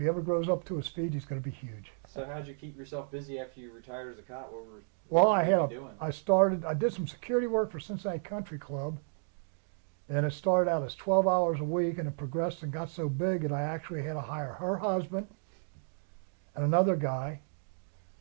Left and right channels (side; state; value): left; silent; digital silence